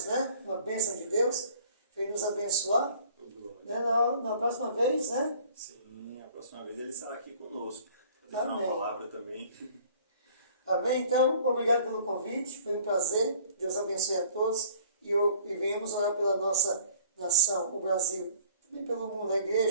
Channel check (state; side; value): inverted; both; correlation -0.53